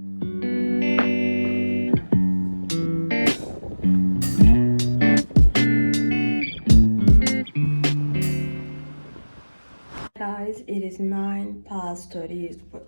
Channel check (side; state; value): both; inverted; correlation -1.00